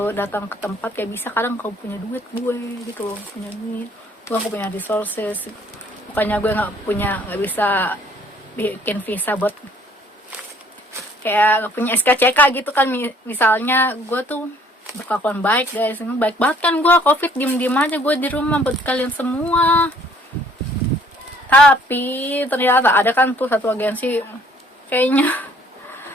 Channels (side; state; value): both; normal; correlation 0.59